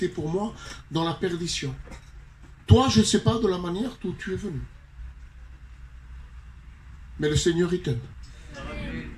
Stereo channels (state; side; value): identical; both; correlation 1.00